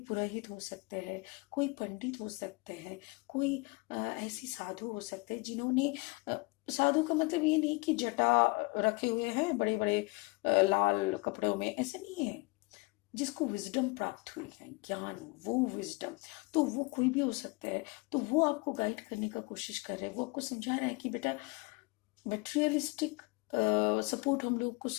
पुरोहित हो सकते हैं, कोई पंडित हो सकते हैं, कोई ऐसी साधु हो सकते हैं जिन्होंने साधु का मतलब ये नहीं कि जटा रखे हुए हैं बड़े बड़े लाल कपड़ों में, ऐसे नहीं है। जिसको विजडम प्राप्त हुई है, ज्ञान, वो विजडम, तो वो कोई भी हो सकता है। तो वो आपको गाइड करने का कोशिश कर रहे हैं, वो आपको समझा रहे हैं कि बेटा मटेरियलिस्टिक सपोर्ट हम लोग को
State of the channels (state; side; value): quieter; right; 26.0 dB